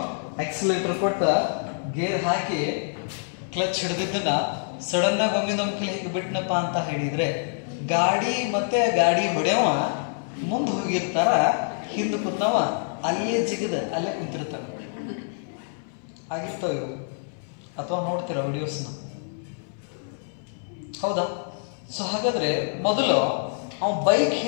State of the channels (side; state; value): right; silent; 61 dB below the other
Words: ಎಕ್ಸಿಲೇಟರ್ ಕೊಟ್ಟ ಗೇರ್ ಹಾಕಿ ಕ್ಲಚ್ ಹಿಡಿದಿದ್ದನ್ನ ಸಡನ್ ಆಗಿ ಒಮ್ಮೆ ನಮ್ಗೆ ಹೇಗೆ ಬಿಟ್ನಪ್ಪ ಅಂತ ಹೇಳಿದ್ರೆ ಗಾಡಿ ಮತ್ತೆ ಗಾಡಿ ಹೊಡೆಯವ ಮುಂದೆ ಹೋಗಿರ್ತಾರ, ಹಿಂದೆ ಕೂತವ ಅಲ್ಲೇ ಜಿಗದ ಅಲ್ಲೇ ಕುಂತಿರ್ತಾರ. ಆಗಿರ್ತಾವ ಇವು, ಅಥವಾ ನೋಡ್ತೀರ ವಿಡಿಯೋಸ್ನ, ಹೌದಾ? ಸೊ ಹಾಗಾದ್ರೆ ಮೊದಲು ಅವನ್ ಬೈಕ್